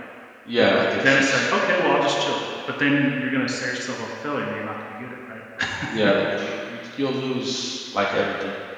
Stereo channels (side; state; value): both; identical; correlation 1.00